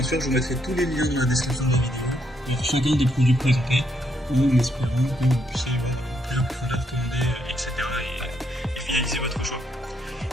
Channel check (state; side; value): normal; both; correlation 0.75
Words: sûr, je vous mettrai tous les liens dans la description de la vidéo pour chacun des produits présentés, en espérant que vous puissiez voir plus en profondeur, commander, etc. et finaliser votre choix.